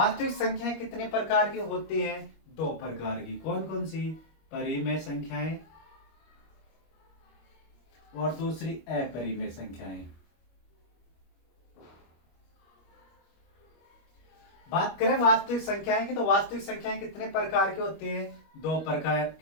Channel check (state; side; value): late; right; 25 ms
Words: संख्याएं कितने प्रकार की होती हैं, दो प्रकार की। कौन कौन सी, परिमेय संख्याएं और दूसरी अपरिमेय संख्याएं। बात करें वास्तविक संख्याएं की, तो वास्तविक संख्याएं कितने प्रकार की होती हैं, दो प्रकार